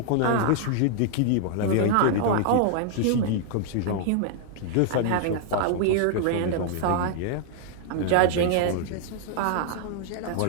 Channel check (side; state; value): both; different; correlation -0.01